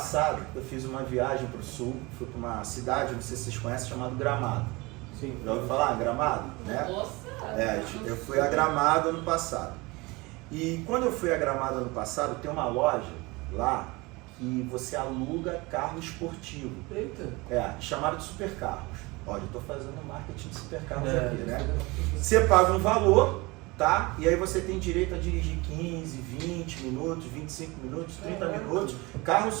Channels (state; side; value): quieter; left; 23.9 dB